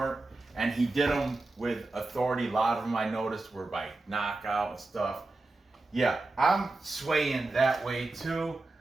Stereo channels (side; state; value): left; quieter; 3.1 dB